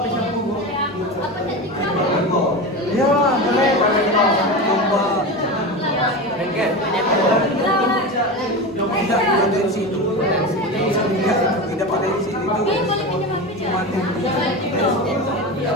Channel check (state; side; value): normal; both; correlation 0.24